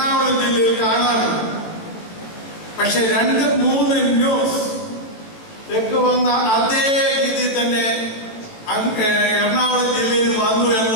ജില്ലയിൽ കാണാറുണ്ട്. പക്ഷെ 2-3 ന്യൂസ് തെക്ക് വന്ന അതേ രീതി തന്നെ എറണാകുളം ജില്ലയിൽ വന്നു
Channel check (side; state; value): right; late; 18 ms